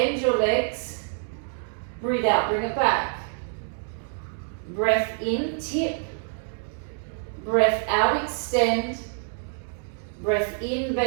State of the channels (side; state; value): left; silent; 57 dB below the other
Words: your legs. Breathe out. Bring it back. Breath in. Tip. Breath out. Extend. Breath in,